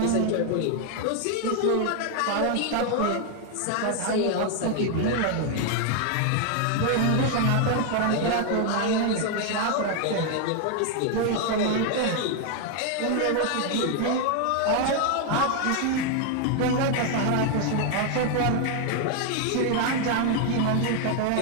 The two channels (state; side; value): different; both; correlation 0.01